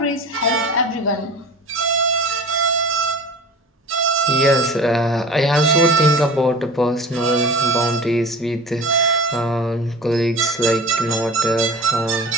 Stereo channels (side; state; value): both; normal; correlation 0.37